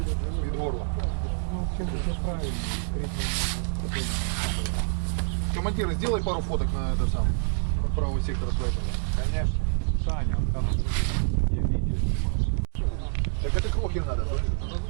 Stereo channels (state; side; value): silent; left; digital silence